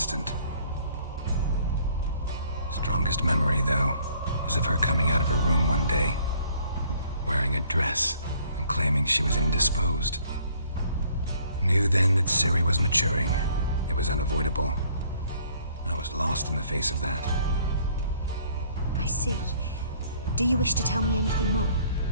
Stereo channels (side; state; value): both; inverted; correlation -0.61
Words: Strongest memory, though, is of her coming out of her room one day, wearing a dress and claiming she was indisposed. Knew then that Ciri was maturing. It was unavoidable. I was lost in the face of that. I see. Do you wish to tell me anything more?